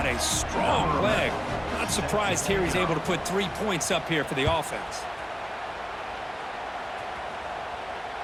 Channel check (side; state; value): both; identical; correlation 1.00